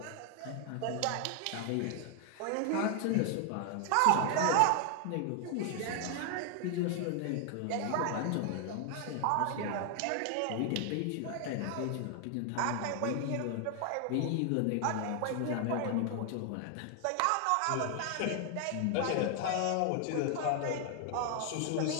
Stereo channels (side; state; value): both; different; correlation 0.00